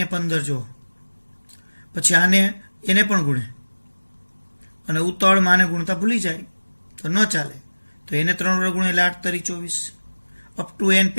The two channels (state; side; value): inverted; both; correlation -1.00